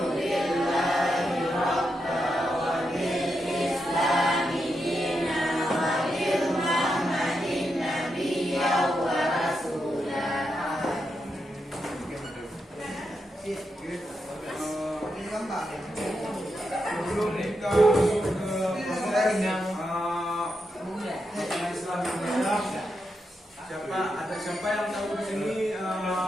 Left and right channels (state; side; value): normal; both; correlation 0.85